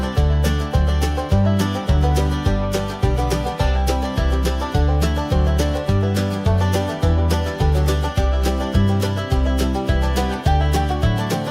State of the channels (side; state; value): both; identical; correlation 1.00